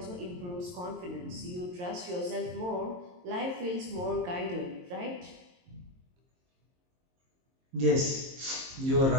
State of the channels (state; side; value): late; left; 22 ms